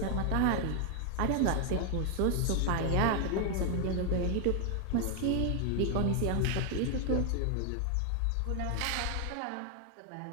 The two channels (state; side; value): different; both; correlation 0.00